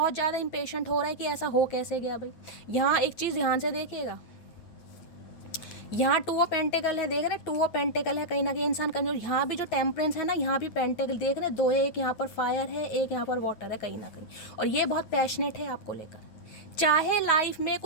ज़्यादा इम्पेशेंट हो रहा है कि ऐसा हो कैसे गया भाई। यहाँ एक चीज़ ध्यान से देखिएगा, यहाँ 2 ऑफ पेंटिकल है, देख रहे हैं 2 ऑफ पेंटिकल है, कहीं ना कहीं इंसान कमजोर। यहाँ भी जो टेम्परेंस है ना, यहाँ भी पेंटिकल देख रहे हैं, 2 है, एक यहाँ पर फायर है, एक यहाँ पर वाटर है कहीं ना कहीं। और ये बहुत पैशनेट है आपको लेकर। चाहे लाइफ में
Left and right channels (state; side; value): late; right; 9.3 ms